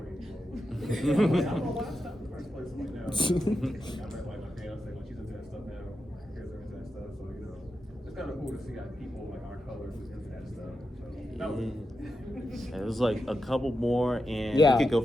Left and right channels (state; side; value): normal; both; correlation 0.88